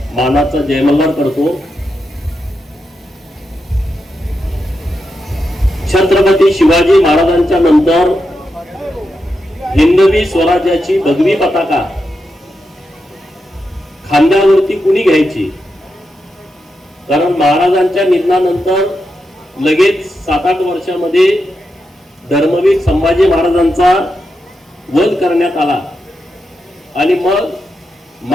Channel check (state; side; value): normal; both; correlation 0.87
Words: मानाचा जयमल्हार करतो. छत्रपती शिवाजी महाराजांच्या नंतर हिंदवी स्वराज्याची भगवी पताका खांद्यावरती कुणी घ्यायची? कारण महाराजांच्या निधनानंतर लगेच 7-8 वर्षामध्ये धर्मवीर संभाजी महाराजांचा वध करण्यात आला आणि मग